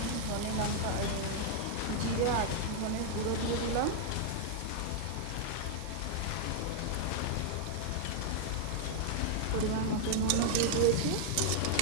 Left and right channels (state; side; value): different; both; correlation 0.00